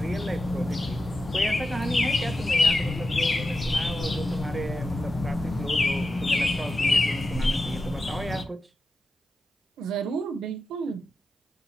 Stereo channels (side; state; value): both; normal; correlation 0.90